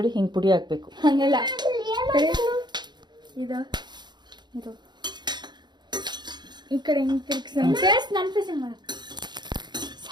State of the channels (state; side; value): late; left; 0.21 ms